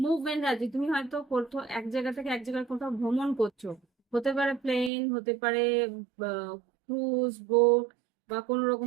আছে। তুমি হয়তো কোথাও এক জায়গা থেকে এক জায়গায় কোথাও ভ্রমণ করছো, হতে পারে প্লেন, হতে পারে ক্রুজ বোট, বা কোনো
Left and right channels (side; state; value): left; drops out; at 4.9 s